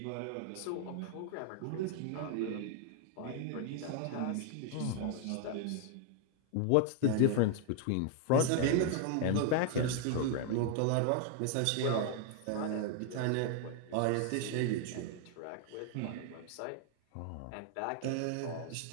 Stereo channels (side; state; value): both; different; correlation 0.00